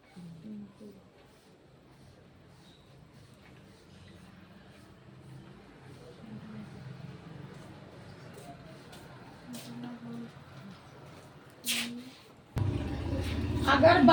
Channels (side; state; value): both; identical; correlation 1.00